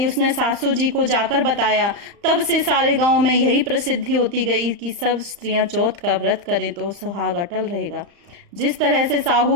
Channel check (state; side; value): late; left; 35 ms